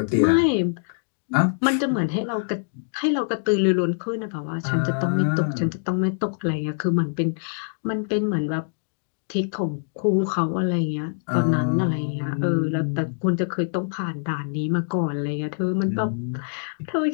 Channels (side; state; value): right; silent; digital silence